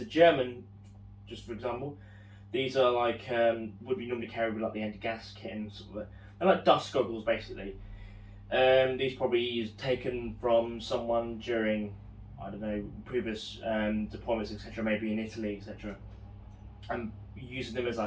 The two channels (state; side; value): identical; both; correlation 1.00